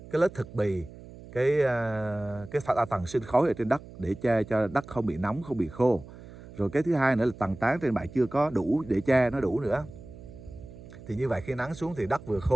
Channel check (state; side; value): noise; right; hum, 17 dB below the sound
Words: lớp thực bì, cái tầng sinh khối ở trên đất để che cho đất không bị nóng, không bị khô. Rồi cái thứ hai nữa là tầng tán trên bạn chưa có đủ để che nó đủ nữa. Thì như vậy khi nắng xuống thì đất vừa